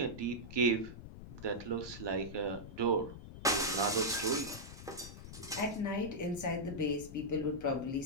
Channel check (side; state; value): left; noise; rumble, 13 dB below the sound